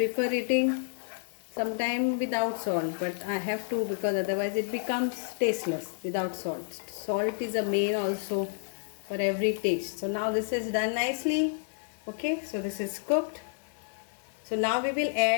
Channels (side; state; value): right; silent; 58 dB below the other